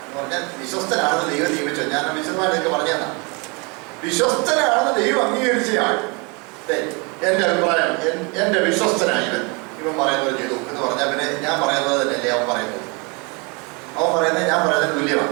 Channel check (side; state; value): left; quieter; 30.2 dB